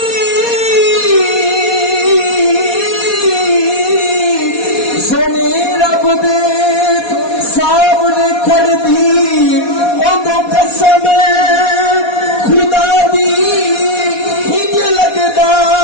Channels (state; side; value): late; right; 4.2 ms